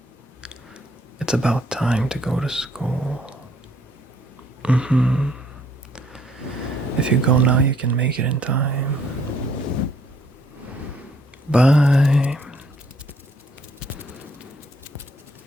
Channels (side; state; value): both; normal; correlation 0.65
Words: It's about time to go to school. If you go now, you can make it in time. Bye.